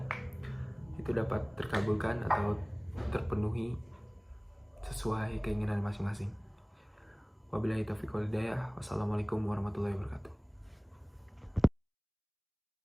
itu dapat terkabulkan atau terpenuhi sesuai keinginan masing-masing. Wabillahi taufiq wal hidayah. Wassalamualaikum warahmatullahi wabarakatuh.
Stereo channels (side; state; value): both; identical; correlation 1.00